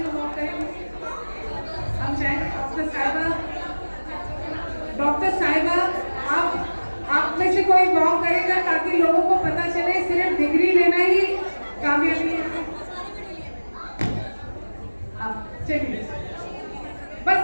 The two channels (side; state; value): both; inverted; correlation -1.00